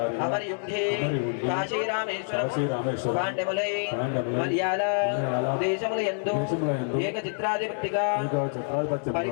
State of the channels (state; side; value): silent; right; digital silence